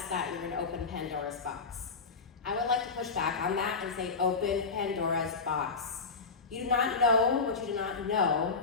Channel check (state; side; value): quieter; right; 4.6 dB